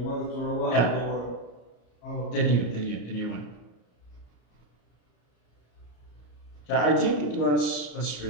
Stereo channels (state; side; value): late; right; 34 ms